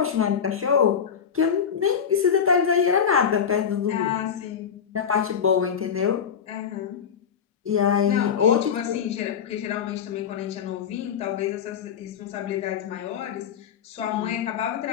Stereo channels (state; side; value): quieter; right; 7.5 dB